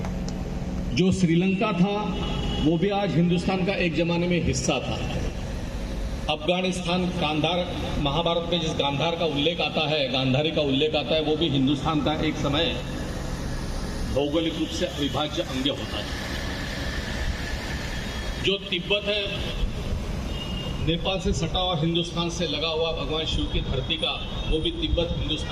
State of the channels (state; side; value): identical; both; correlation 1.00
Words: जो श्रीलंका था वो भी आज हिंदुस्तान का एक जमाने में हिस्सा था। अफगानिस्तान गांधार, महाभारत में जिस गांधार का उल्लेख आता है, गांधारी का उल्लेख आता है, वो भी हिंदुस्तान का एक समय भौगोलिक रूप से अविभाज्य अंग होता है। जो तिब्बत है, नेपाल से सटा हुआ, हिंदुस्तान से लगा हुआ भगवान शिव की धरती का, वो भी तिब्बत